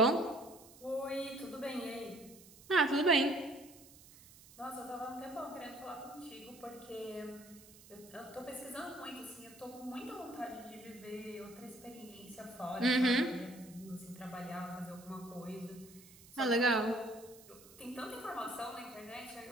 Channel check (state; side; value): noise; right; hiss, 21 dB below the sound